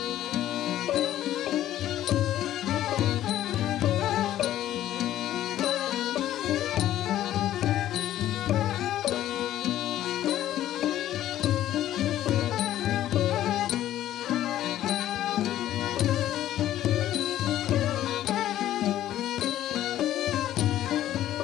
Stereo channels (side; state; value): right; quieter; 12.8 dB